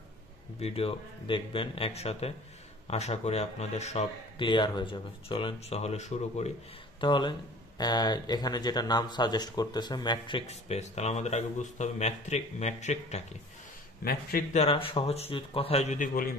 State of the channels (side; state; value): both; normal; correlation 0.46